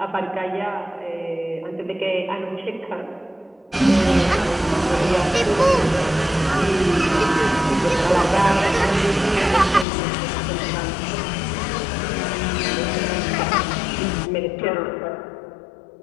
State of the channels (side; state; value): right; drops out; at 9.9 s